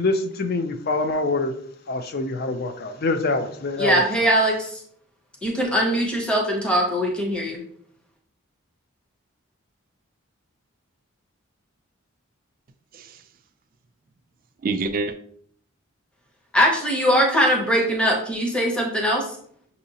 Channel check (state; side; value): normal; both; correlation 0.33